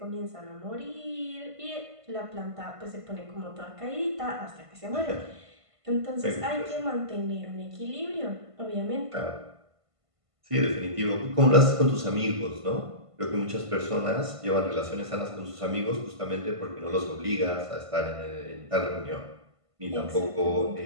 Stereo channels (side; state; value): left; late; 1.5 ms